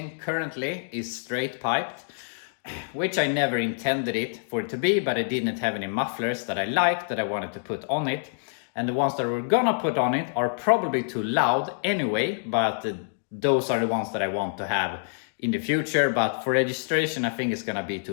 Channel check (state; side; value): silent; right; digital silence